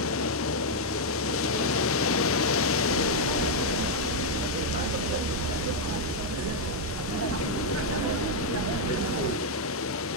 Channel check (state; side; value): normal; both; correlation -0.01